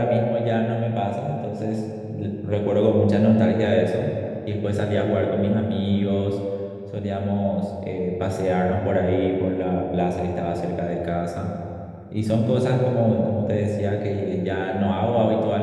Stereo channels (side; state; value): both; identical; correlation 1.00